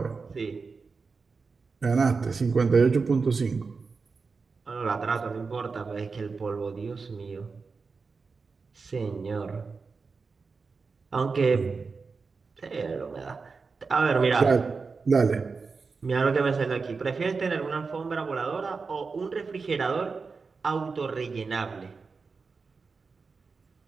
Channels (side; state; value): left; quieter; 4.7 dB